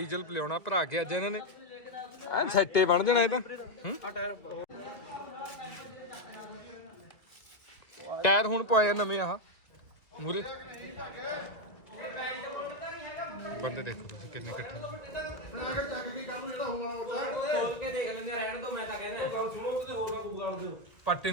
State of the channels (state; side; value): late; right; 1.7 ms